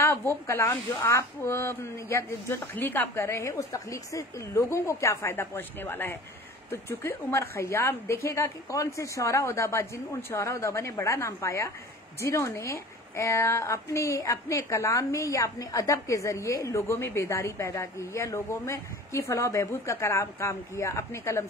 वो कलाम जो आप या जो तख्लीक आप कर रहे हैं उस तख्लीक से लोगों को क्या फायदा पहुंचने वाला है। तो चूंकि उमर खयाम देखिएगा कि कौन से शौरा उदाबा, उन शौरा उदाबा ने बड़ा नाम पाया जिन्होंने अपने कलाम में या अपने अदब के जरिए लोगों में बेदारी पैदा की, या लोगों में की फलाह बहबूद का काम किया अपने कलम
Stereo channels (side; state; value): both; normal; correlation 0.41